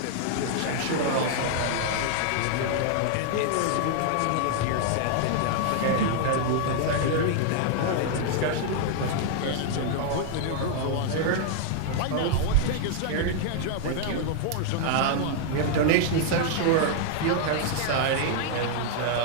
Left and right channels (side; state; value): both; different; correlation 0.00